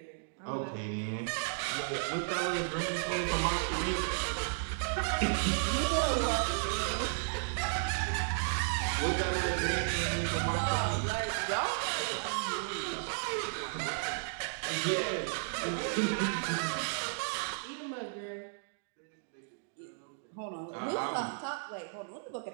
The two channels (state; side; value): silent; left; digital silence